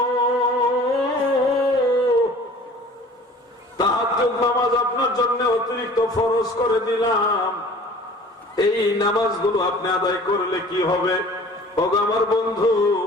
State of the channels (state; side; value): normal; both; correlation 0.47